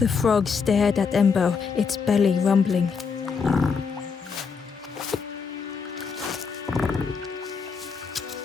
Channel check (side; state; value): right; quieter; 5.6 dB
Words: frog stared at Ember, its belly rumbling.